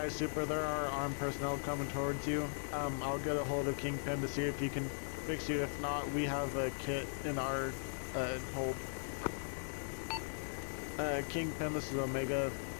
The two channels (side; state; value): right; silent; digital silence